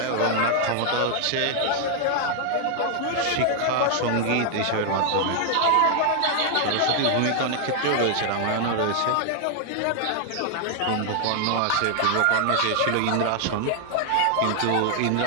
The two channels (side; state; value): both; different; correlation 0.00